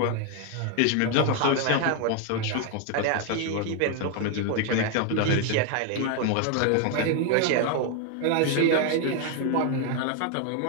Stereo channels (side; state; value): both; different; correlation 0.01